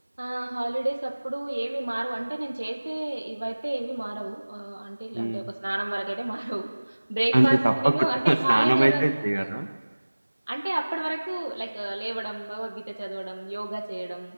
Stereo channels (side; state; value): both; inverted; correlation -1.00